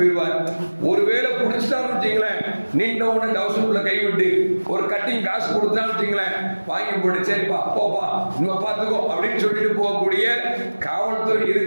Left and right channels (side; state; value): both; inverted; correlation -1.00